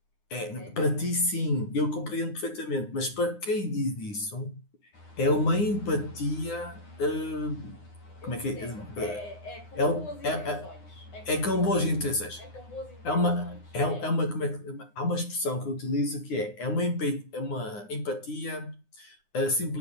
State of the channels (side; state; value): right; late; 9.8 ms